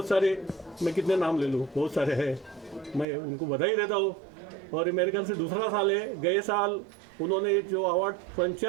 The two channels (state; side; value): drops out; left; at 3.1 s